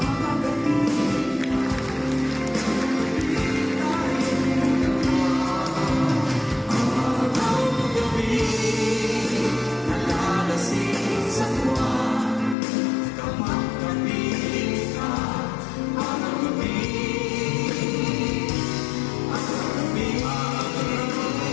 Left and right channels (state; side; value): drops out; right; at 12.6 s